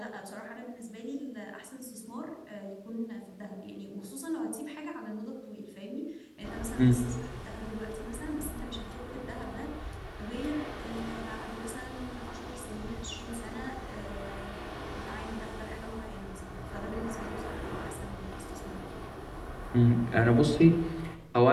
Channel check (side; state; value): both; identical; correlation 1.00